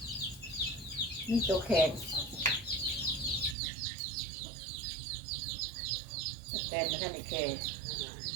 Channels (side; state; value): left; drops out; at 3.6 s